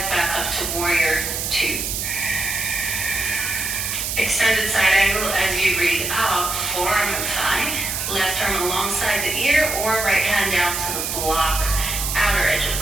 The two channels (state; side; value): noise; right; hiss, 2 dB below the sound